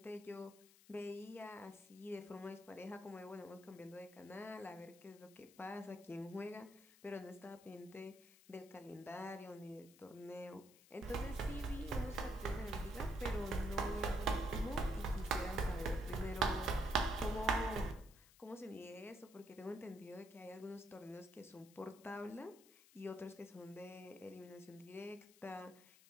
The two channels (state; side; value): noise; left; hiss, 23 dB below the sound